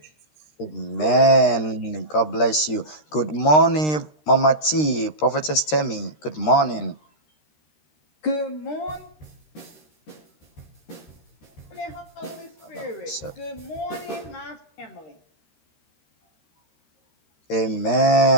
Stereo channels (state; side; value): late; right; 13 ms